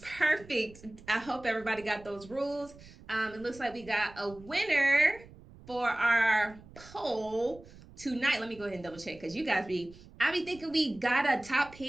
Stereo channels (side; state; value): right; noise; rumble, 20 dB below the sound